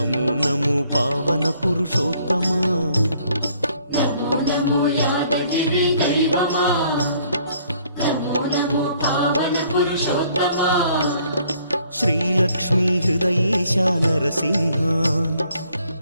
నమో పావన పురుషోత్తమా, నమో నమో యాదగిరి దైవమా, నమో నమో పావన పురుషోత్తమా, శ్రీలక్ష్మీ హృదయేశ నరసింహ,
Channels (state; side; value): inverted; both; correlation -0.64